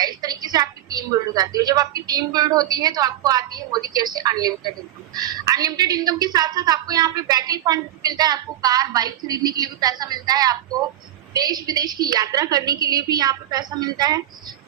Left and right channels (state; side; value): quieter; left; 12.4 dB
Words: इस तरीके से आपकी टीम बिल्ड हो जाती है। जब आपकी टीम बिल्ड होती है तो आपको आती है मोदी केयर से अनलिमिटेड इनकम। अनलिमिटेड इनकम के साथ साथ आपको यहाँ पे बैकएंड फंड मिलता है। आपको कार, बाइक खरीदने के लिए भी पैसा मिलता है। आपको देश विदेश की यात्रा करने के लिए भी यहाँ पे पैसा मिलता है